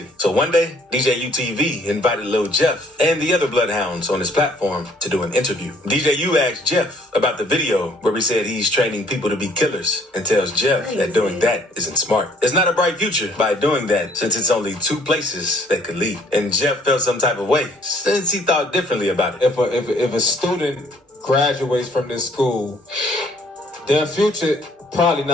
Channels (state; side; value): normal; both; correlation 0.61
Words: So one day, DJ UTV invited Lil Jeff and the other Bloodhounds on his platform to do an interview. DJ U asked Jeff about the video where he said he's training people to be killers, and tells Jeff that doing that isn't smart. It's not a bright future by doing that, since it's only 2 places that could lead. And Jeff felt some type of way since he thought differently about it. If a student graduates from this school, their future probably